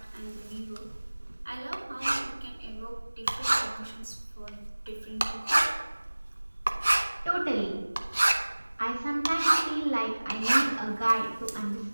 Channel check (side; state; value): both; inverted; correlation -1.00